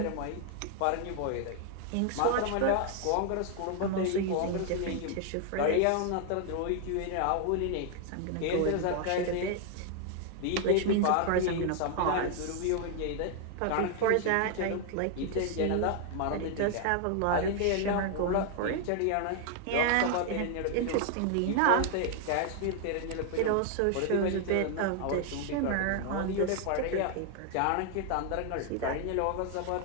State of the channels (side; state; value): both; different; correlation 0.00